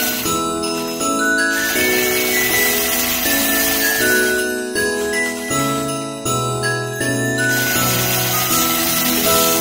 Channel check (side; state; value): both; identical; correlation 1.00